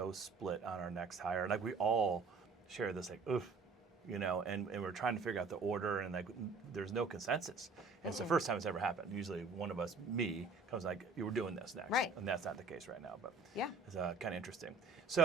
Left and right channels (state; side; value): quieter; left; 3.9 dB